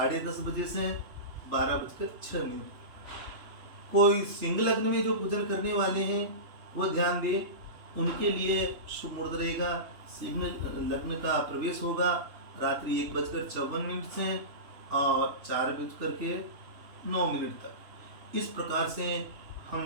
बजे से 12:06। कोई सिंह लग्न में जो पूजन करने वाले हैं वो ध्यान दें, उनके लिए शुभ मुहूर्त रहेगा। सिंह लग्न का प्रवेश होगा रात्रि 1:54 से और 4:09 तक। इस प्रकार से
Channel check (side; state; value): left; late; 3.3 ms